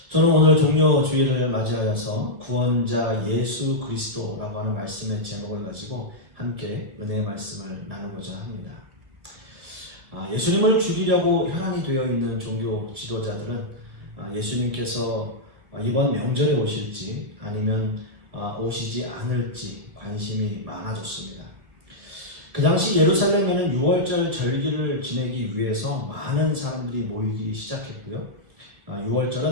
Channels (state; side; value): late; left; 1.7 ms